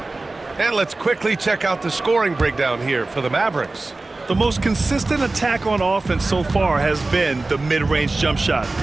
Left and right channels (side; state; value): left; quieter; 3.2 dB